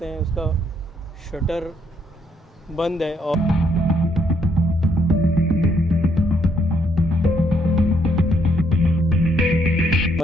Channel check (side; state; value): both; normal; correlation 0.72